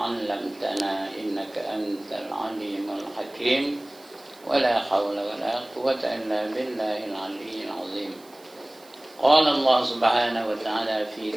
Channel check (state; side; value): noise; right; hiss, 25 dB below the sound